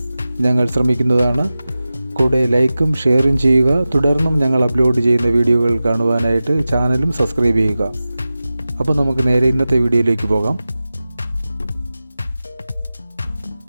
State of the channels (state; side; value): inverted; both; correlation -0.95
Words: ഞങ്ങൾ ശ്രമിക്കുന്നതാണ്. കൂടെ ലൈക്കും ഷെയറും ചെയ്യുക. തുടർന്നും ഞങ്ങൾ അപ്ലോഡ് ചെയ്യുന്ന വീഡിയോകൾ കാണുവാനായിട്ട് ചാനലും സബ്സ്ക്രൈബ് ചെയ്യുക. അപ്പോൾ നമുക്ക് നേരെ ഇന്നത്തെ വീഡിയോയിലേക്ക് പോകാം.